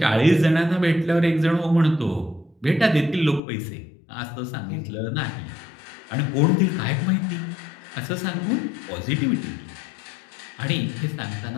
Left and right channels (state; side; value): drops out; right; at 3.4 s